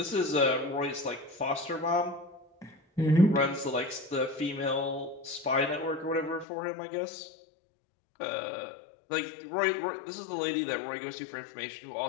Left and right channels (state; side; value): drops out; right; at 6.5 s